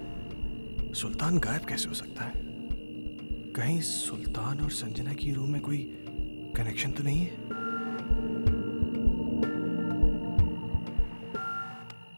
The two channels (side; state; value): both; inverted; correlation -1.00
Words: सुल्तान गायब कैसे हो सकता है? कहीं सुल्तान और संजना की रूम में कोई कनेक्शन तो नहीं है?